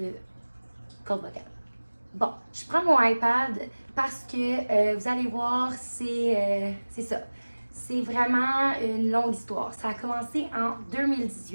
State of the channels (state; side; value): inverted; both; correlation -1.00